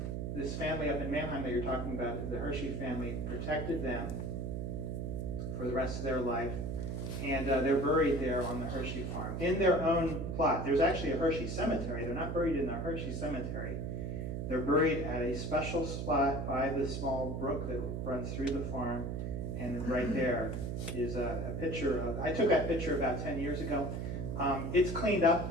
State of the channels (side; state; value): right; noise; hum, 3 dB below the sound